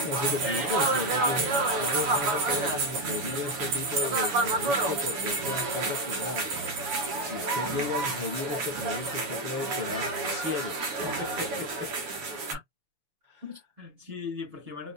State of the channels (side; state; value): left; late; 7.0 ms